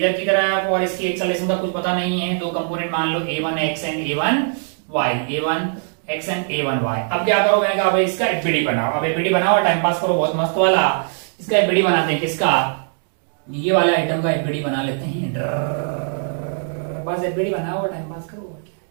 की तरफ, और इसकी एक्सेलरेशन का कुछ पता नहीं है। 2 कंपोनेंट मान लो A1 x and A1 y, A1 x and A1 y। अब क्या करो? मैंने कहा भाई इसका एफबीडी बनाओ। अब एफबीडी बनाओ, टाइम पास करो बहुत मस्त वाला। इसका एफबीडी बनाते हैं। किसका? ये वाला आइटम का एफबीडी बना लेते हैं। बस एफबीडी बनाओ, टाइम पास करो।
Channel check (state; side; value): silent; left; 65 dB below the other